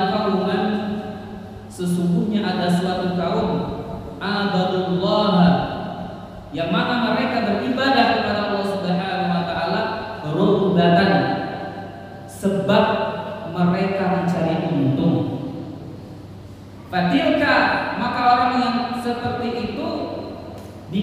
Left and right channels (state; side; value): identical; both; correlation 1.00